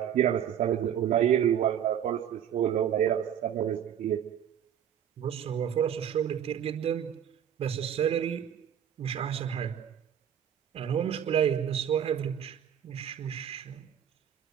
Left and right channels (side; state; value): left; quieter; 9.3 dB